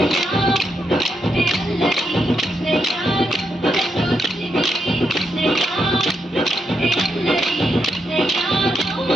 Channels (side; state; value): both; normal; correlation 0.81